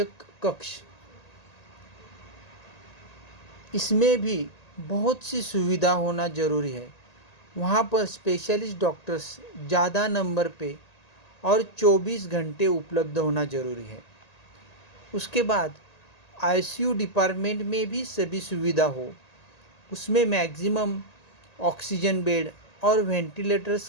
कक्ष, इसमें भी बहुत सी सुविधा होना ज़रूरी है। वहाँ पर स्पेशलिस्ट डॉक्टर्स ज़्यादा नंबर पे और 24 घंटे उपलब्ध होना ज़रूरी है। उसके बाद ICU डिपार्टमेंट में भी सभी सुविधा हो, उसमें मैक्सिमम ऑक्सीजन बेड और वेंटिलेटर्स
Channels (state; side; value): late; right; 1.8 ms